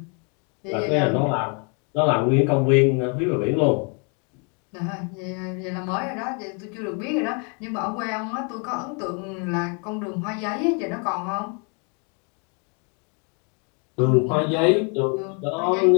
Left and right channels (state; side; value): quieter; right; 36.6 dB